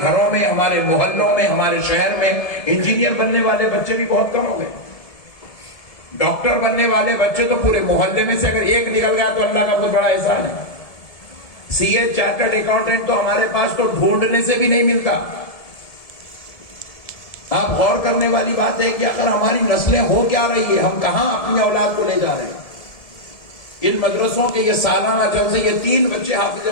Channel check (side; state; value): right; late; 1.7 ms